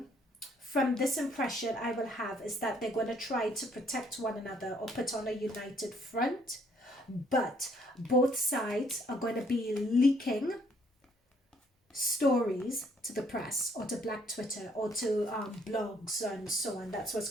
from this impression I will have, is that they're going to try to protect one another or put on a united front. But both sides are going to be leaking stories to the press or to black Twitter or to blogs and so on. That's what's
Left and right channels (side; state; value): both; normal; correlation 0.65